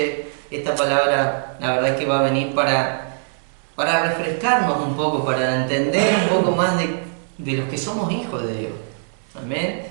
Esta palabra, la verdad es que va a venir para refrescarnos un poco, para entender un poco más de los que somos hijos de Dios. Amén.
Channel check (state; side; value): silent; left; 65 dB below the other